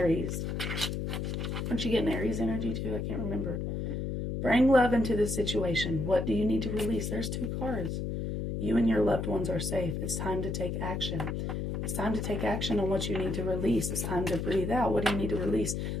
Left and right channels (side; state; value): left; noise; hum, 2 dB below the sound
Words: Aren't you getting Aries energy too? I can't remember. Bring love into the situation. What do you need to release? There's 2 cards. You and your loved ones are safe. It's time to take action. It's time to take action on what you need to release. It's time to breathe out. What do you need to release?